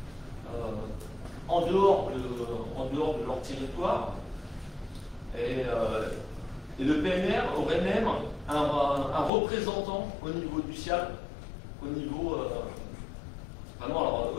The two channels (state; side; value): drops out; right; at 9.3 s